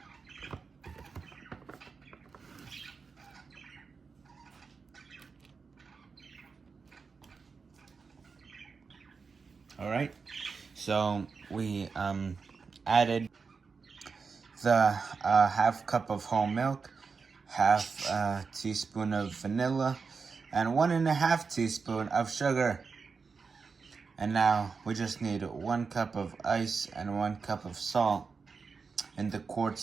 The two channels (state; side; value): quieter; left; 5.0 dB